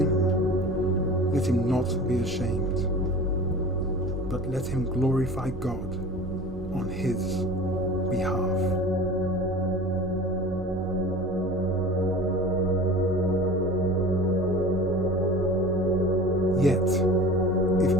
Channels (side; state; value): both; normal; correlation 0.38